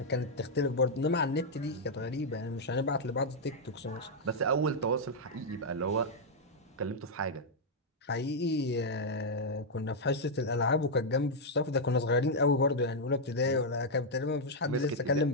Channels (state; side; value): normal; both; correlation -0.03